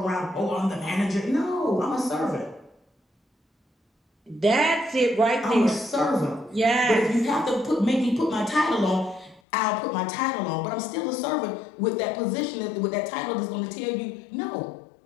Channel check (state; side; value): drops out; right; at 9.4 s